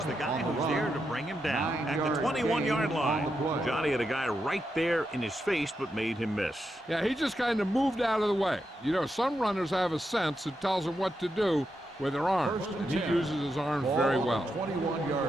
the guy who's there to bring him down at the 21-yard line. Johnny had a guy right there in his face, but made him miss. Yeah, he just kind of moved out of the way. You know, some runners have a sense that tells them what to do with their arms, and he uses his arms very well.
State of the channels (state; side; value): normal; both; correlation 0.85